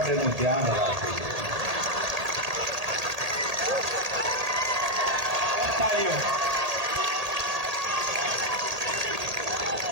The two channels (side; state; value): left; late; 1.8 ms